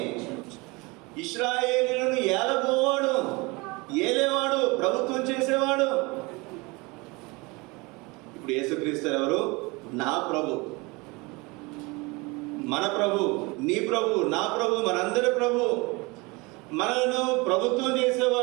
ఇశ్రాయేలీయులను ఏలబోవాడు, ఏలేవాడు, ప్రభుత్వం చేసేవాడు. ఇప్పుడు యేసుక్రీస్తు ఎవరు? నా ప్రభు, మన ప్రభు, నీ ప్రభు, నా ప్రభు, మనందరి ప్రభు. మనను ప్రభుత్వం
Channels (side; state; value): left; quieter; 25.6 dB